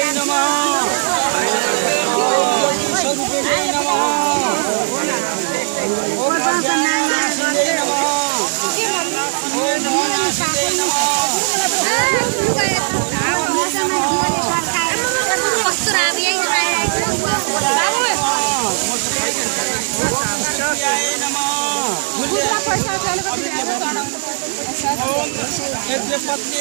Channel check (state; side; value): silent; left; digital silence